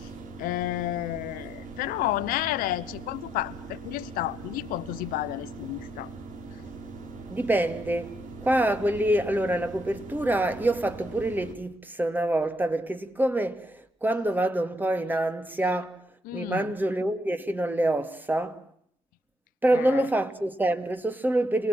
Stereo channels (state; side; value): normal; both; correlation 0.74